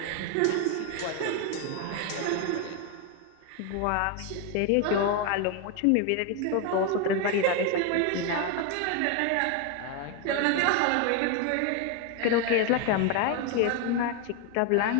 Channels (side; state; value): both; different; correlation 0.01